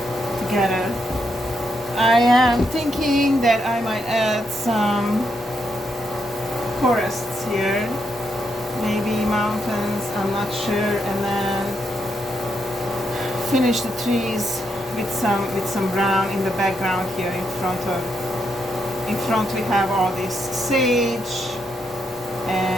together. I am thinking that I might add some forests here, maybe mountains, I'm not sure, and then finish the trees with some brown in the background here in front we have all this sage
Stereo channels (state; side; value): normal; both; correlation 0.80